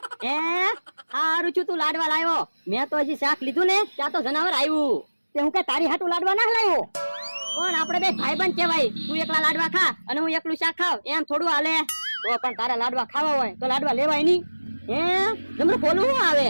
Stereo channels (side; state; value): both; inverted; correlation -1.00